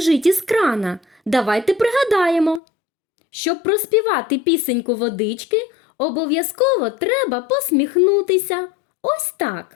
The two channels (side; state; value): right; drops out; at 2.6 s